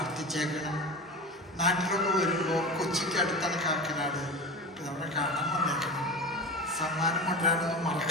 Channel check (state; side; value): normal; both; correlation 0.28